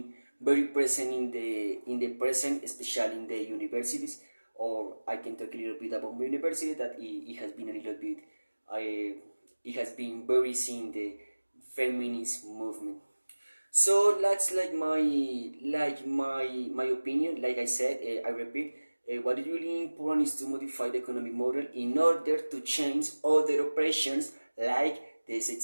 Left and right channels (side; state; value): both; inverted; correlation -1.00